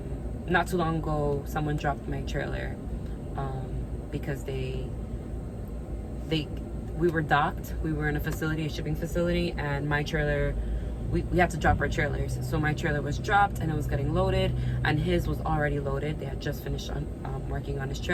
Not too long ago, someone dropped my trailer because we were docked. We were in a shipping facility, and my trailer, we had to drop our trailers. So my trailer was dropped and it was getting loaded, and his was already loaded. They had just finished working on his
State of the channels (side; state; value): both; identical; correlation 1.00